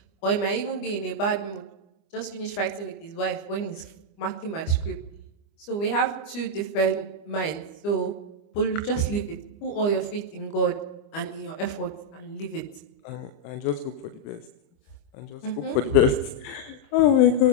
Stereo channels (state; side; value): late; right; 25 ms